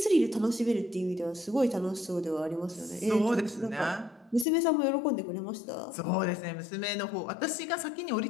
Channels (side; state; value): right; drops out; at 4.5 s